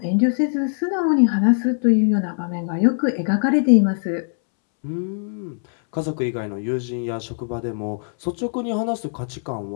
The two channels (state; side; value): silent; right; 65 dB below the other